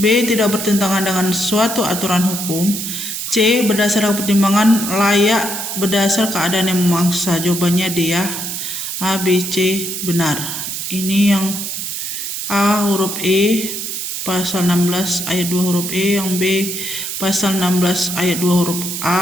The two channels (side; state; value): right; noise; hiss, 5 dB below the sound